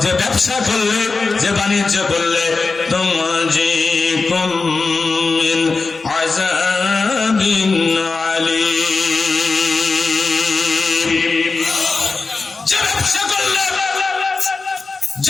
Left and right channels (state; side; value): quieter; right; 4.1 dB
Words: যে ব্যবসা করলে, যে বাণিজ্য করলে তুমজিকুম মিন আযাবিন আলীম, যে ব্যবসা করলে